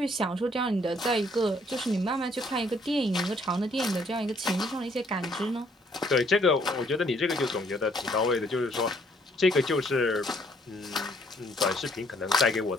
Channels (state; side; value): normal; both; correlation 0.65